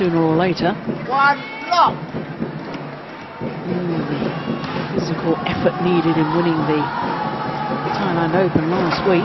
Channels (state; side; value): identical; both; correlation 1.00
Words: or later. One lock. The physical effort needed in winning the Thailand Open last